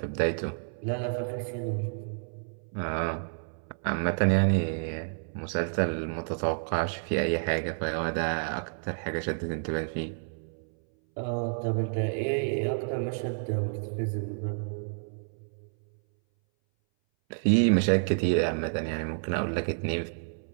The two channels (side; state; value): left; silent; 58 dB below the other